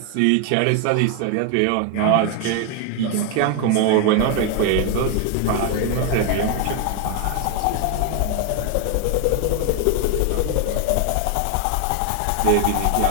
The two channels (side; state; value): both; different; correlation 0.01